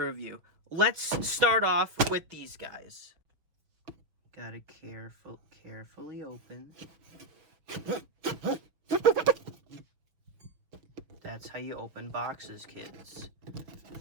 review. Let's start off with these guys. Gotta carefully open. That's how you open boxes, kids.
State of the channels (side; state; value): left; late; 6.0 ms